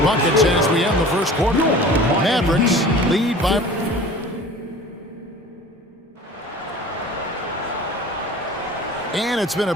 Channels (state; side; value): normal; both; correlation 0.42